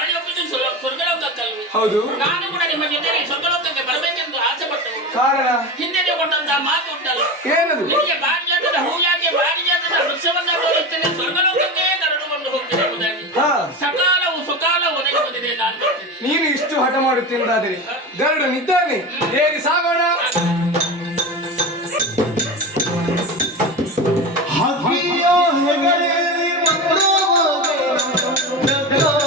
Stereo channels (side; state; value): both; normal; correlation 0.25